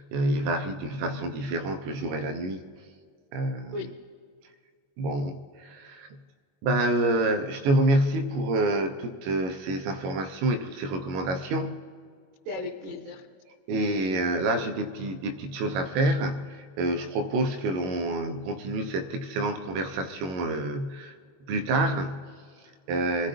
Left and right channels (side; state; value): left; late; 22 ms